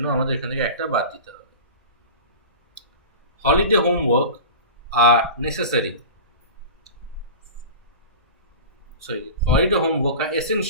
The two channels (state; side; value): inverted; both; correlation -0.32